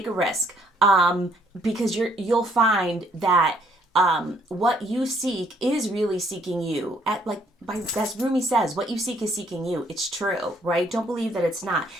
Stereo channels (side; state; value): both; normal; correlation 0.66